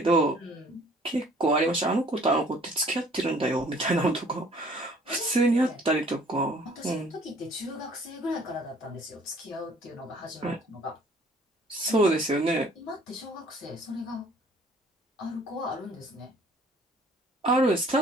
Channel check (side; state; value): both; normal; correlation 0.56